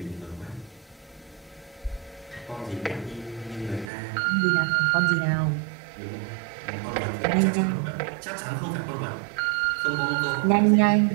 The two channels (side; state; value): left; drops out; at 3.9 s